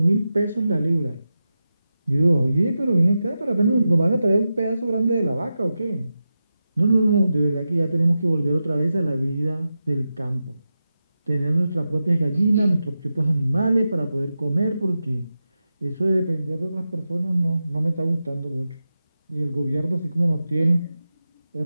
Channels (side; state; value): both; inverted; correlation -0.91